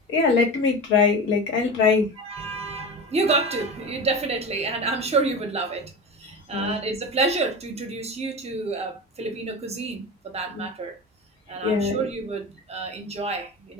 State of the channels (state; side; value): normal; both; correlation 0.27